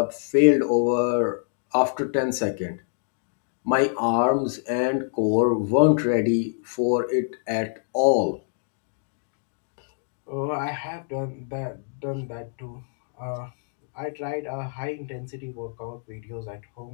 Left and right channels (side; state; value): right; silent; 61 dB below the other